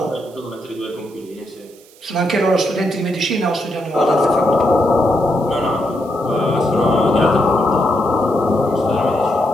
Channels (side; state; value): right; noise; hiss, 26 dB below the sound